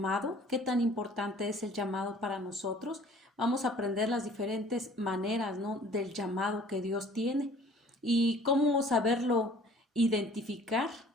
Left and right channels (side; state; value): both; normal; correlation 0.51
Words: qué tan importante es el llamado para nosotros. Vamos a aprender las diferentes maneras, ¿no?, del llamado que Dios tiene y cómo saberlo identificar